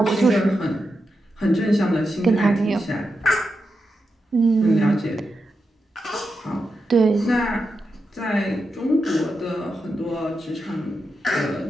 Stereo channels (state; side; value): normal; both; correlation 0.88